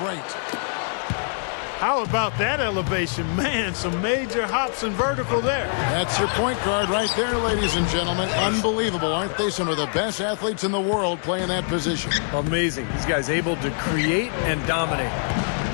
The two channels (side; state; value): right; silent; 59 dB below the other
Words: great. How about that elevation? Man, some major hops and vertical there. That's your point guard right there, ladies and gentlemen. Unbelievable, aren't they? Some of the best athletes in the world playing that position. Amazing. These guys able to create and dominate.